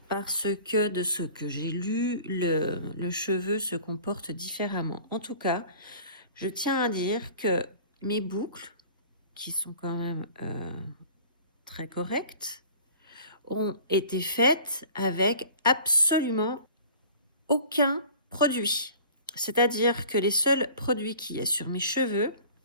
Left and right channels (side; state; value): both; inverted; correlation -0.45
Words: Parce que de ce que j'ai lu, le cheveu se comporte différemment. En tout cas, je tiens à dire que mes boucles, qui sont quand même très correctes, ont été faites avec absolument aucun produit. C'est-à-dire que les seuls produits qu'il y a sur mes cheveux,